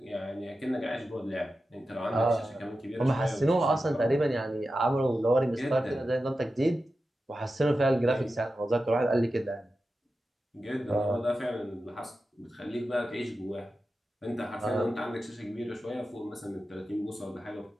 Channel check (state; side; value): normal; both; correlation 0.92